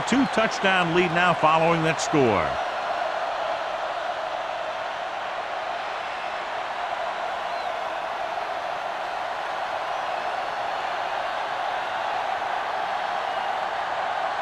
lead now following that score.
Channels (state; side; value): identical; both; correlation 1.00